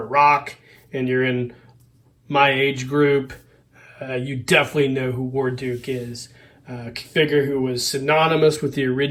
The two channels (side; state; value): both; identical; correlation 1.00